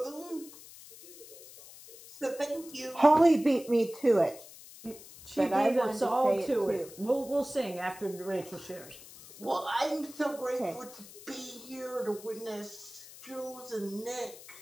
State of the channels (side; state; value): left; noise; hiss, 18 dB below the sound